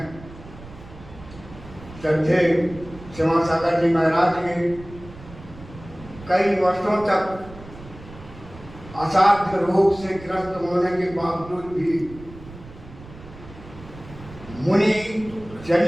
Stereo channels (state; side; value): noise; right; rumble, 17 dB below the sound